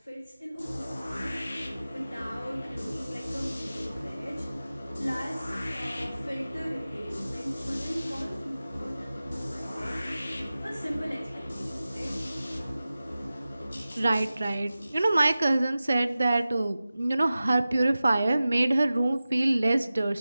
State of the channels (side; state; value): both; inverted; correlation -0.96